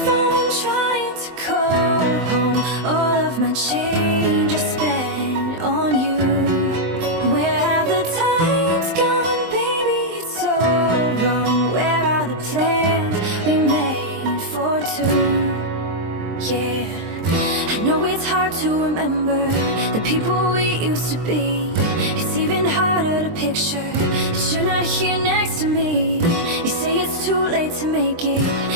trying to call home. All of my change I spent on you. Where have the times gone, baby? It's all wrong. Where are the plans we made for two? Yeah, I know it's hard to remember the people we used to be. It's even harder to picture that you're not here next to me. You say it's too late to make it,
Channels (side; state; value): left; late; 23 ms